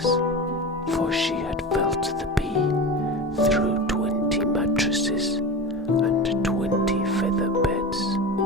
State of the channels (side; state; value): both; normal; correlation 0.27